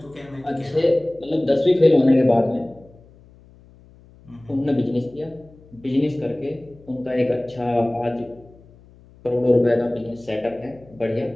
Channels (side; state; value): left; noise; hum, 25 dB below the sound